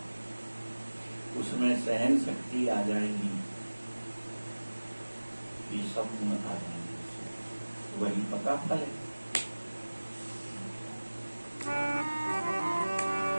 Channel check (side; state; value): both; inverted; correlation -1.00